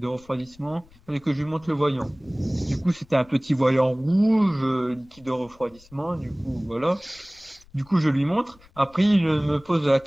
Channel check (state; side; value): noise; left; rumble, 27 dB below the sound